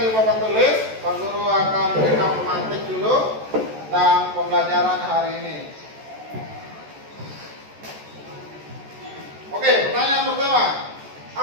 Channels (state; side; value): late; left; 14 ms